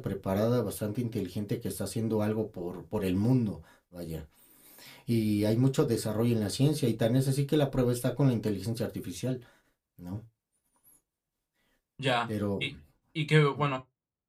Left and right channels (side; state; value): both; identical; correlation 1.00